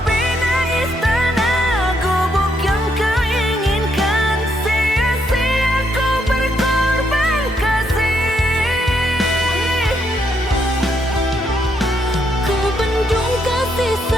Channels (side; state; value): both; normal; correlation 0.75